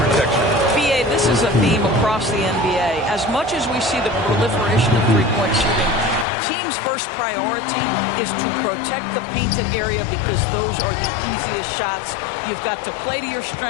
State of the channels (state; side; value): drops out; right; at 6.2 s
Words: BA, this is a theme across the NBA. As much as we see the proliferation of three-point shooting, teams' first priority is to protect the painted area because those are the easiest shots. You've got to play to your